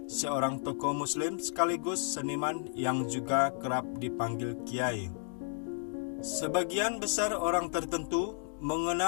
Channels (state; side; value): silent; right; 56 dB below the other